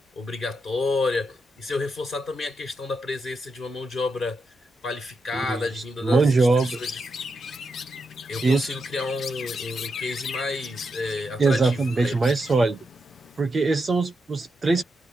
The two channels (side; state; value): both; normal; correlation 0.85